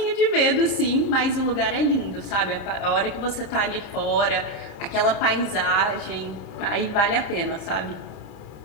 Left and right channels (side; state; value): right; late; 30 ms